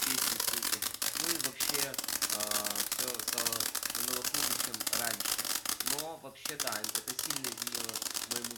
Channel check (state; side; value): identical; both; correlation 1.00